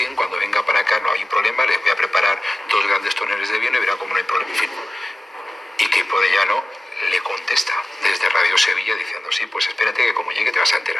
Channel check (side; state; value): both; normal; correlation 0.95